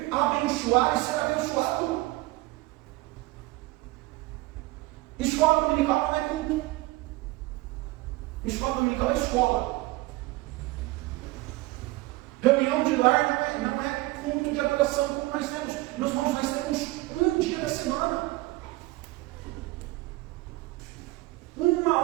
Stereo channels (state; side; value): quieter; left; 20.4 dB